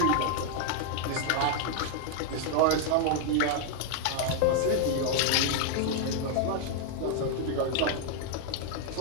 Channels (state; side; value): different; both; correlation 0.00